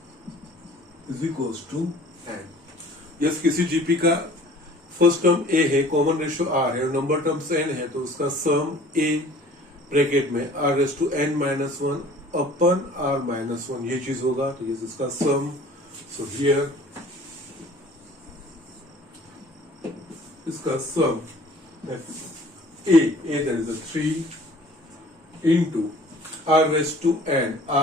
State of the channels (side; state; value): both; normal; correlation 0.49